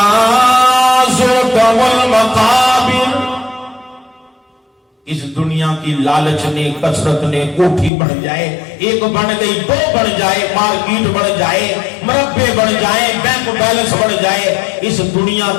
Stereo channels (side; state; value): right; drops out; at 7.9 s